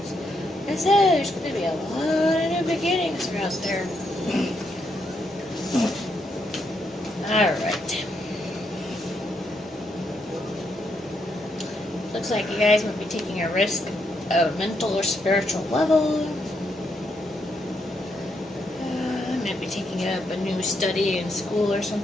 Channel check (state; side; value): normal; both; correlation 0.78